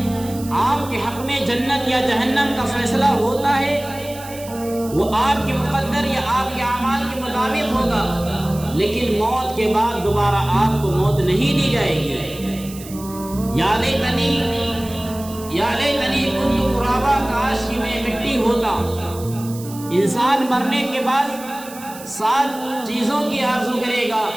آپ کے حق میں جنت یا جہنم کا فیصلہ ہوتا ہے، وہ آپ کے مقدر یا آپ کے اعمال کے مطابق ہوگا، لیکن موت کے بعد دوبارہ آپ کو موت نہیں دی جائے گی. یا لیتنی کنت ترابا، کاش کہ میں مٹی ہوتا. انسان مرنے کے بعد 7 چیزوں کی آرزو کرے گا.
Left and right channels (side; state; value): right; noise; hiss, 16 dB below the sound